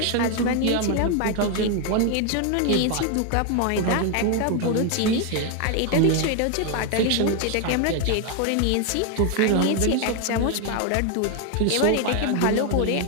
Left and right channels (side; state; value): both; different; correlation 0.01